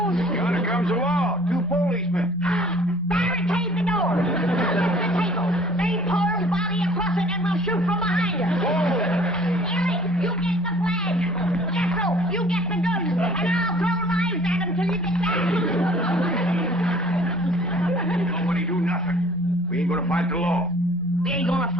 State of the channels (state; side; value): normal; both; correlation 0.53